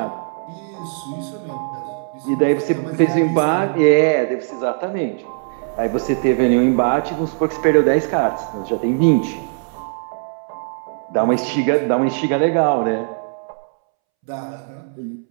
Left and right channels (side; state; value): left; silent; 66 dB below the other